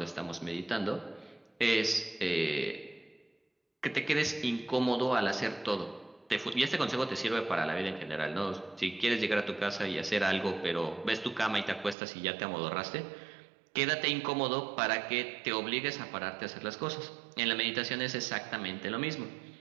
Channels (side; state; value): left; drops out; at 12.0 s